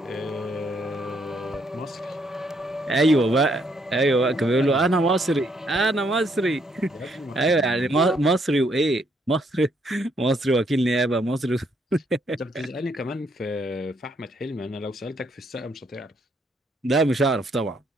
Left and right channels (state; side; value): normal; both; correlation 0.72